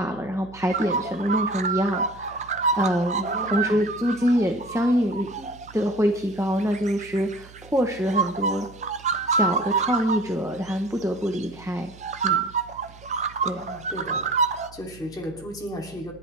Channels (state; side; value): noise; right; hum, 21 dB below the sound